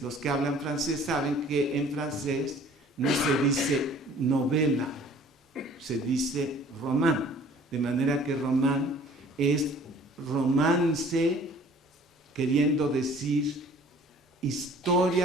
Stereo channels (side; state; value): both; normal; correlation 0.52